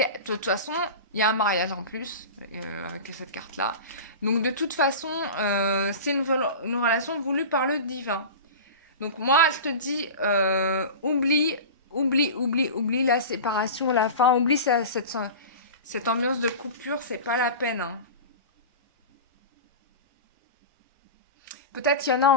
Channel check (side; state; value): both; inverted; correlation -0.31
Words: De toute façon, il y a un mariage en plus avec cette carte-là. Donc de toute façon, c'est une relation voulue par le divin. Donc moi, je te dis, oublie la séparation, la fin, oublie cette ambiance de coupure, c'est pas la peine, hein. Peut-être qu'il y en a